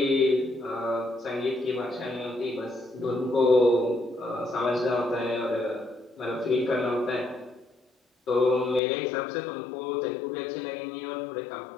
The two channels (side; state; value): right; drops out; at 8.8 s